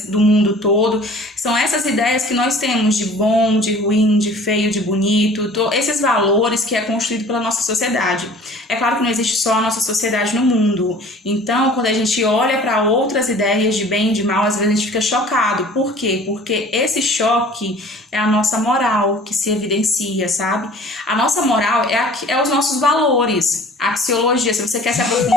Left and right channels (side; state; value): both; normal; correlation 0.47